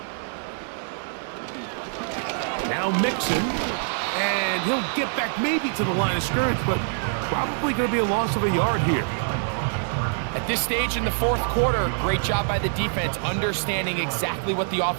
Now Mixon, and he'll get back maybe to the line of scrimmage, but probably going to be a loss of a yard here. At this stage in the 4th quarter, great job by the defense, understanding exactly what the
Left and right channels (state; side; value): silent; left; digital silence